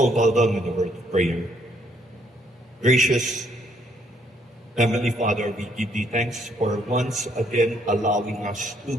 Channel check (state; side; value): normal; both; correlation 0.69